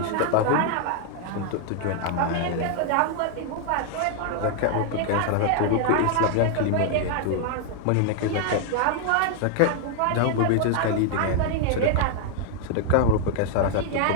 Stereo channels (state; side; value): different; both; correlation 0.00